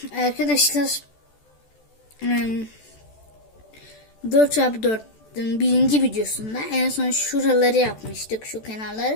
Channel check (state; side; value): late; right; 14 ms